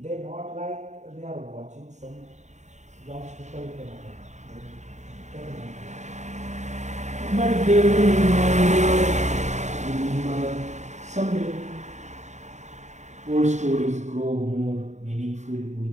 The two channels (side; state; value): left; late; 0.34 ms